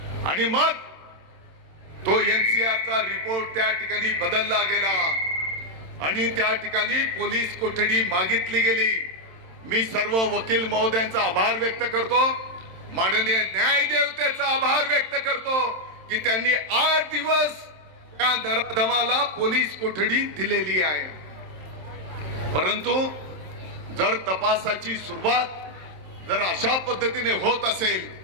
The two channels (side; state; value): left; late; 27 ms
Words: आणि मग तो NCRचा रिपोर्ट त्या ठिकाणी बदलला गेला आणि त्या ठिकाणी पोलीस कोठडी मागितली गेली. मी सर्व वकील महोदयांचा आभार व्यक्त करतो, माननीय न्यायदेवतेचा आभार व्यक्त करतो की त्यांनी 8 दिवस त्या नराधमाला पोलीस कोठडी दिलेली आहे. परंतु जर तपासाची सुरुवात जर अशा पद्धतीने होत असेल,